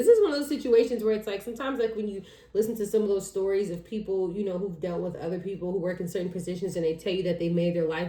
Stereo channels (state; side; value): identical; both; correlation 1.00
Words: is one of those situations where it's like sometimes like when you listen to some of those stories of people, you know, who've dealt with other people who work in certain positions and they tell you that they made their